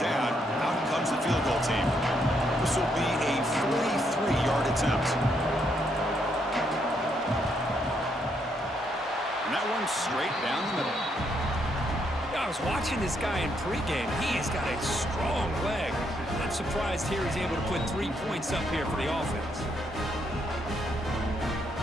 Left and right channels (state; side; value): normal; both; correlation 0.75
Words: down, out comes the field goal team. This will be a 43-yard attempt. And that one straight down the middle. I was watching this guy in pregame. He has got a strong leg. I'm surprised here he's able to put 3 points up here for the offense.